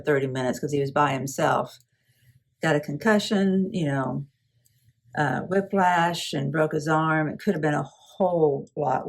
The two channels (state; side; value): identical; both; correlation 1.00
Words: minutes because he was by himself. Got a concussion, whiplash, and broke his arm. It could have been a whole